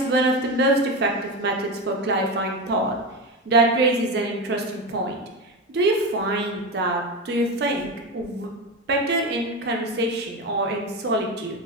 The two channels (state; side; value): normal; both; correlation 0.19